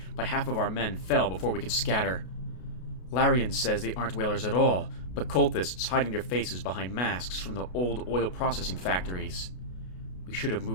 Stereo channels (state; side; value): late; right; 33 ms